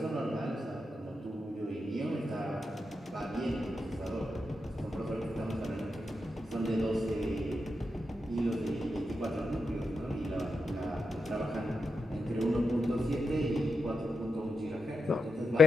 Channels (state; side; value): normal; both; correlation 0.87